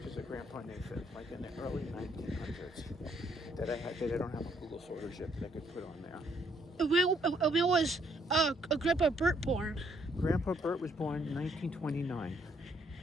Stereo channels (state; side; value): normal; both; correlation 0.70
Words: of Grandpa Nathan, like in the early 1900s, that I don't have on Google Photos yet that I could put on there. When was Grandpa Bert born? Grandpa Bert was born in 1929.